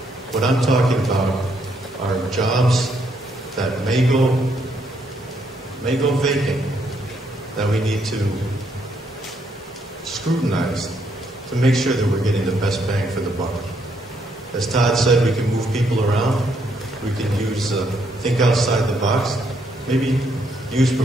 What I'm talking about are jobs that may go vacant, that we need to scrutinize to make sure that we're getting the best bang for the buck. As Todd said, we can move people around. We can use think outside the box. Maybe use per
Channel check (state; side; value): normal; both; correlation 0.73